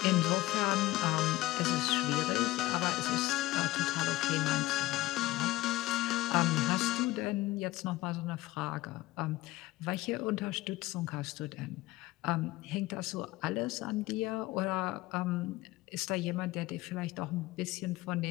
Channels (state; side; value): quieter; right; 18.1 dB